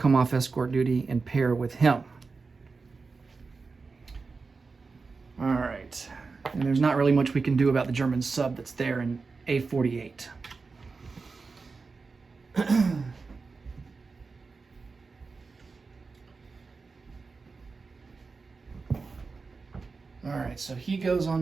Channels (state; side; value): quieter; left; 4.4 dB